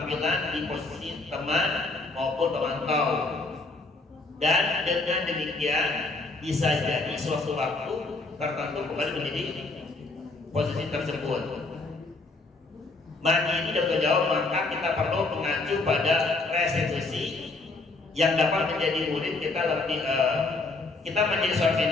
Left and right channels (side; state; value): right; quieter; 3.4 dB